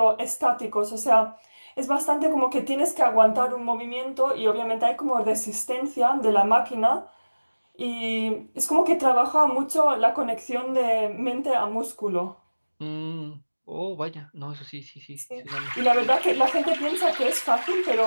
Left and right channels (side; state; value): both; inverted; correlation -1.00